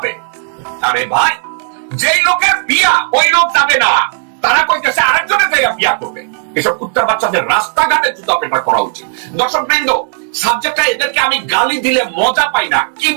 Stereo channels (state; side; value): silent; left; 71 dB below the other